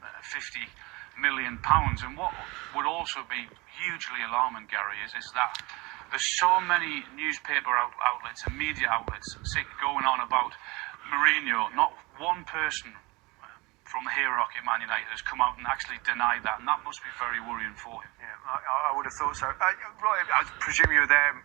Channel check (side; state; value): left; quieter; 24.3 dB